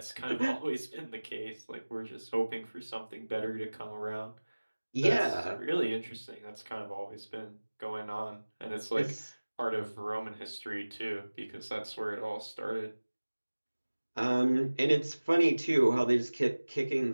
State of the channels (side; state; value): both; inverted; correlation -1.00